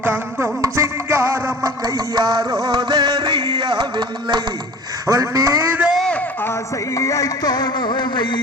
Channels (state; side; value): normal; both; correlation 0.41